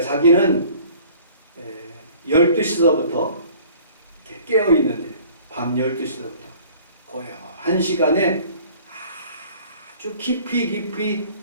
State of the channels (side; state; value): both; inverted; correlation -0.51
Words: 자기는 12시서부터 이렇게 깨어 있는데 밤 12시서부터 거의 1시간에 아주 깊이